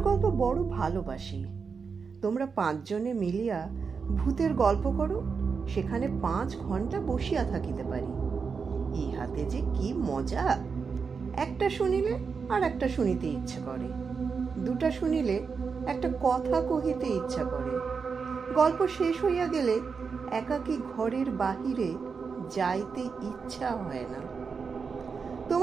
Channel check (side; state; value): left; quieter; 5.5 dB